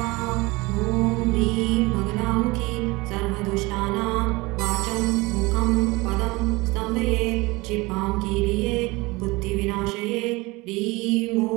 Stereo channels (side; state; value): left; quieter; 23.2 dB